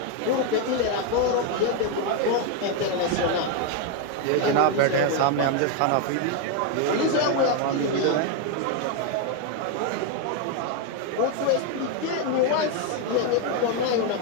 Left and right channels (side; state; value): both; different; correlation 0.01